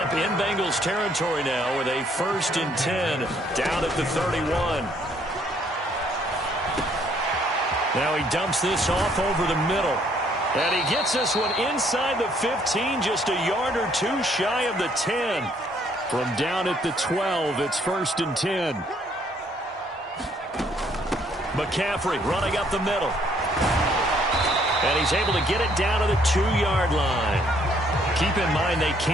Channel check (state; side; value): normal; both; correlation 0.66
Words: in Bengals territory now with a 1st and 10 down at the 31. Now he dumps this off over the middle. And he gets this one inside the 15, just a yard or two shy of the 10. From down at the 12, it's 1st and 10. McCaffrey running up the middle. And he's able to get it down to the 2-yard line. Keep in mind they